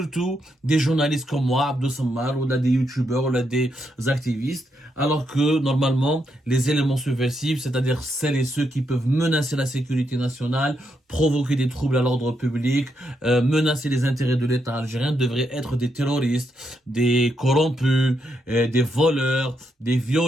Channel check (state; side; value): normal; both; correlation 0.80